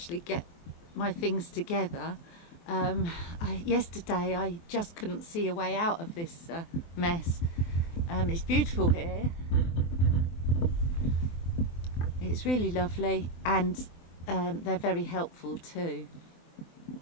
get my things together. Yesterday I just couldn't see a way out of this mess. It's beautiful here. It's really lovely, and they're very helpful too.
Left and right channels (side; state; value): right; late; 24 ms